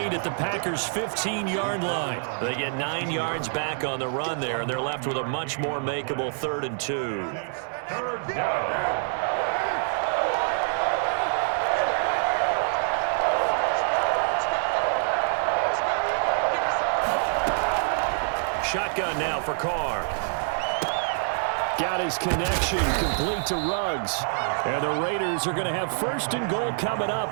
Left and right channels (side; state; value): left; silent; digital silence